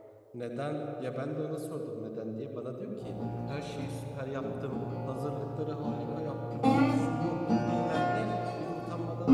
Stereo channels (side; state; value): both; identical; correlation 1.00